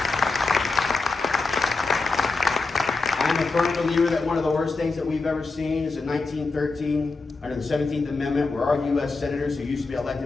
I'm a firm believer that one of the worst things that we've ever seen is in 1913, under the 17th Amendment, where our U.S. senators, who used to be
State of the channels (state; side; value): quieter; right; 3.9 dB